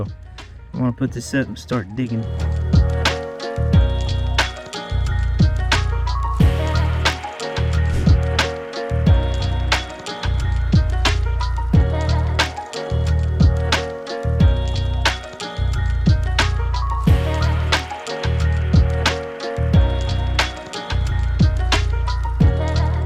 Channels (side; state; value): both; identical; correlation 1.00